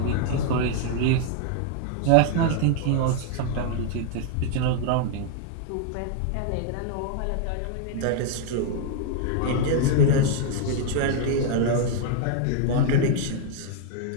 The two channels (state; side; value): different; both; correlation 0.00